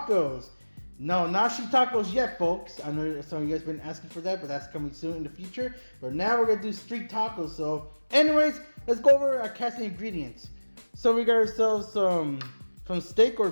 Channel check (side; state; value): both; inverted; correlation -1.00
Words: No, not street tacos yet, folks. I know some of you guys been asking for that, but that's coming soon in the future. But now we're gonna do street tacos. So, anyways, let's go over our cast ingredients. So we got ourselves some steak or